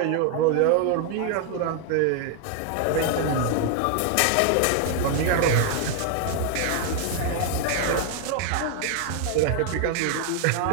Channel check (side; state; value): both; different; correlation 0.00